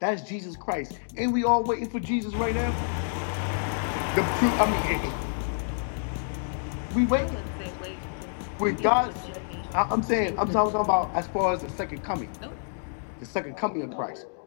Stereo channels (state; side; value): silent; right; digital silence